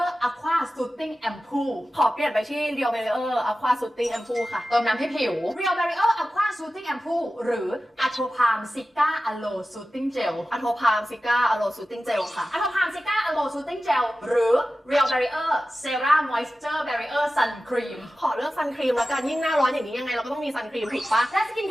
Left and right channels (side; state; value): both; normal; correlation 0.94